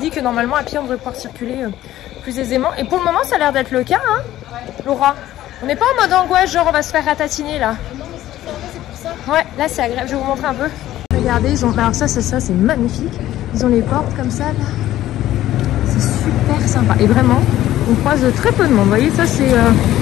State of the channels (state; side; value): quieter; right; 13.9 dB